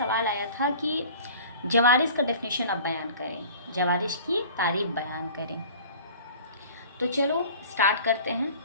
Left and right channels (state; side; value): inverted; both; correlation -0.45